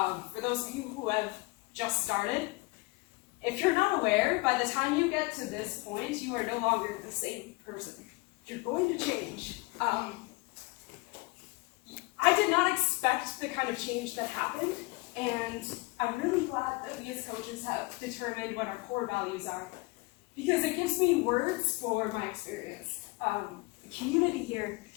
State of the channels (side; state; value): right; quieter; 23.9 dB